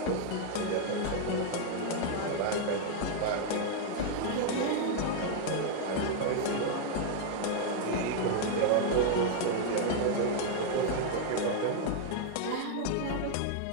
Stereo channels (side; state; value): both; different; correlation 0.00